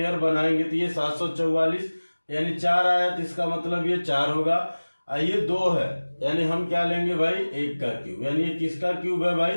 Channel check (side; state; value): both; inverted; correlation -1.00